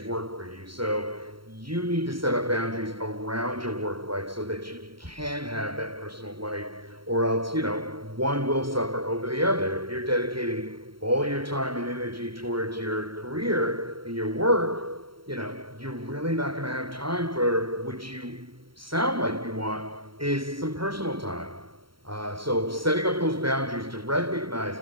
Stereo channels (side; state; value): left; late; 0.74 ms